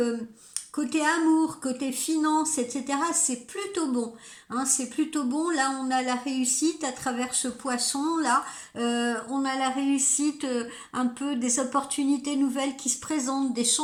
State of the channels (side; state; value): both; identical; correlation 1.00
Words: côté amour, côté finance, etc., c'est plutôt bon. Hein, c'est plutôt bon. Là, on a la réussite à travers ce poisson-là. On a la réussite, un peu des opportunités nouvelles qui se présentent, des